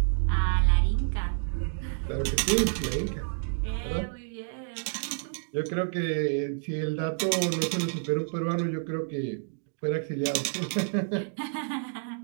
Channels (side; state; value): left; silent; digital silence